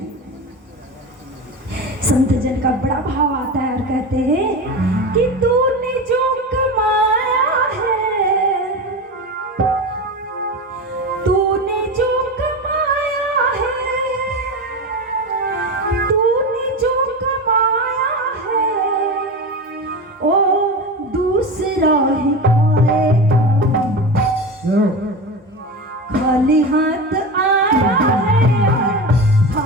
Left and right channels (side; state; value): both; normal; correlation 0.24